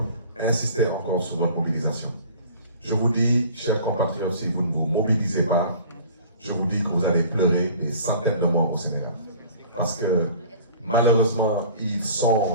insister encore sur votre mobilisation. Je vous dis, chers compatriotes, si vous ne vous mobilisez pas, je vous dis que vous allez pleurer des centaines de morts au Sénégal. Parce que malheureusement, ils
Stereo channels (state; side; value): inverted; both; correlation -0.46